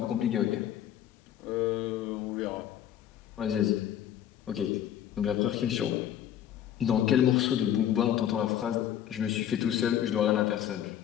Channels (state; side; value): quieter; right; 10.8 dB